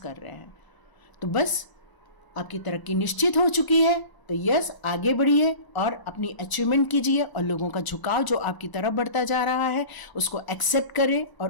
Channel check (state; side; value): late; right; 1.0 ms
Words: रहे हैं। तो बस आपकी तरक्की निश्चित हो चुकी है। तो यस, आगे बढ़िए और अपनी अचीवमेंट कीजिए, और लोगों का झुकाव जो आपकी तरफ बढ़ता जा रहा है उसको एक्सेप्ट करें और